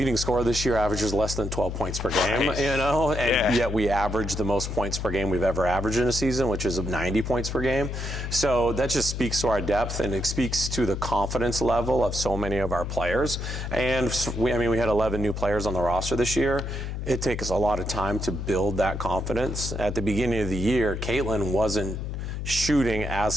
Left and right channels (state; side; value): noise; left; hum, 4 dB below the sound